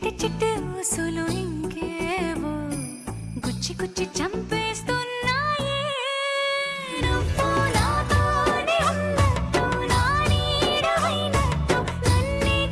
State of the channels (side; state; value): both; identical; correlation 1.00